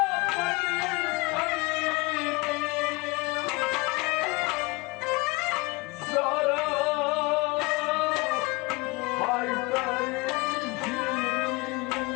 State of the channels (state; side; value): quieter; right; 24.7 dB